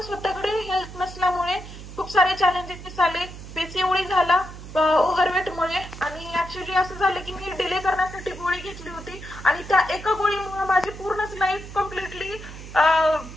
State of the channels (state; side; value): noise; right; hum, 13 dB below the sound